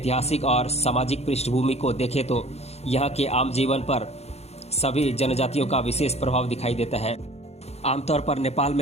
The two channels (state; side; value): late; right; 0.31 ms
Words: और सामाजिक पृष्ठभूमि को देखें तो यहाँ के आम जीवन पर सभी जनजातियों का विशेष प्रभाव दिखाई देता है। आमतौर पर नेपाल